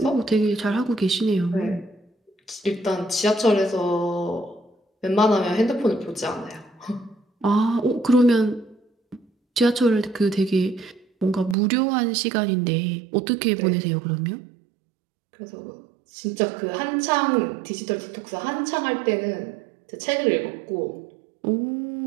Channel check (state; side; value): drops out; left; at 11.6 s